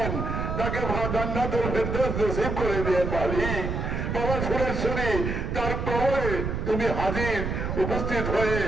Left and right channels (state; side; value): noise; right; rumble, 2 dB below the sound